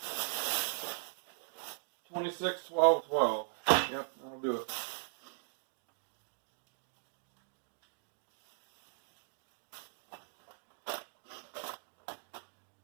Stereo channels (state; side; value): silent; left; digital silence